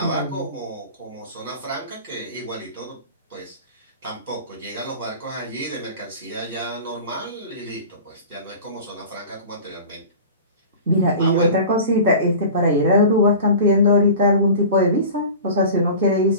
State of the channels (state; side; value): inverted; both; correlation -0.37